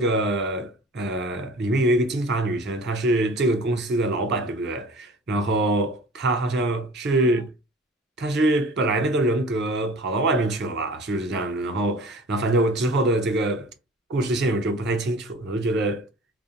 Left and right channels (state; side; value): normal; both; correlation 0.43